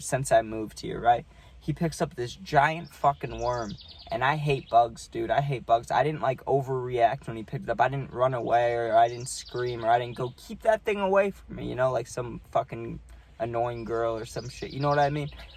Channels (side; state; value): both; identical; correlation 1.00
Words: I moved here, right? He picks up this giant fucking worm, and I hate bugs, dude. I hate bugs. I didn't, like, overreact when he picked it up. I didn't run away, or I didn't scream, or I didn't go, keep that thing away from me, you know, like some fucking annoying girl or some shit. You know what I mean?